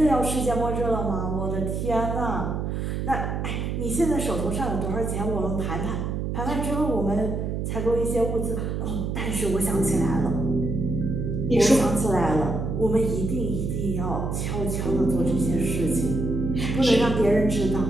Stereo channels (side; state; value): right; noise; hum, 2 dB below the sound